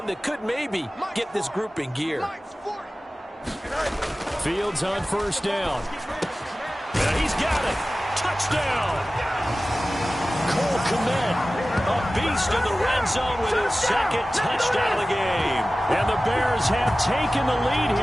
that could maybe get this group in gear. Fields on first down. And he's got it. Touchdown. Cole Kmet, a beast in the red zone with his second touchdown of the game. And the Bears have taken the lead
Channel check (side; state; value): both; normal; correlation 0.96